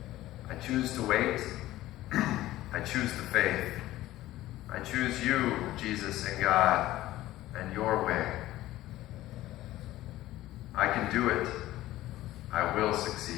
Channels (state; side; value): quieter; right; 15.6 dB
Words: I choose to wait, I choose the faith, I choose you, Jesus and God, and your way. I can do it, I will